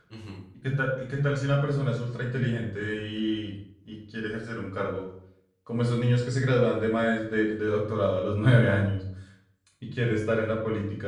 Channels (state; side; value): identical; both; correlation 1.00